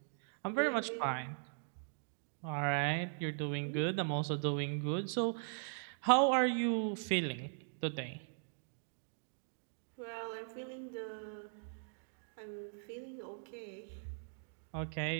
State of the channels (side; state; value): left; silent; digital silence